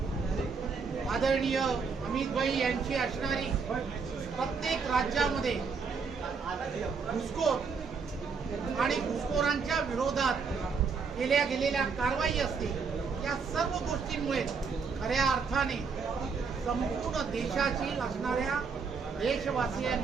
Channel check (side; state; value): left; quieter; 5.3 dB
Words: आदरणीय अमित भाई यांची असणारी प्रत्येक राज्यामध्ये घुसखोर आणि घुसखोरांच्या विरोधात केल्या गेलेल्या कारवाई असतील, या सर्व गोष्टींमुळे खऱ्या अर्थाने संपूर्ण देशाची असणाऱ्या